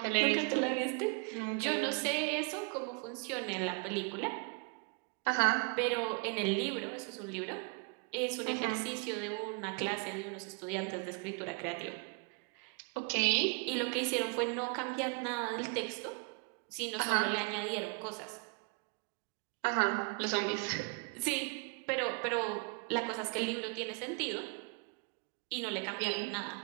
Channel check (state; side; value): quieter; left; 35.8 dB